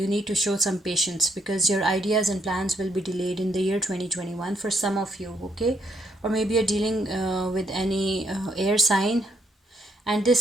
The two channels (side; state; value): both; normal; correlation 0.72